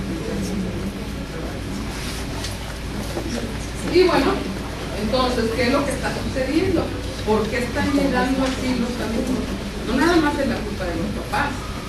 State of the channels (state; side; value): identical; both; correlation 1.00